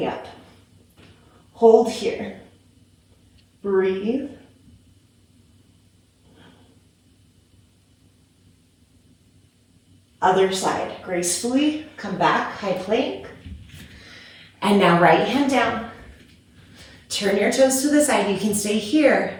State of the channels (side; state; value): both; identical; correlation 1.00